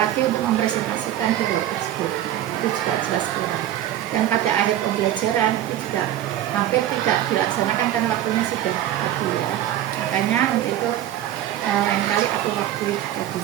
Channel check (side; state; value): left; quieter; 12.4 dB